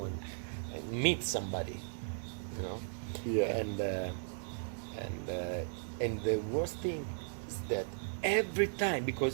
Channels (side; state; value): left; silent; digital silence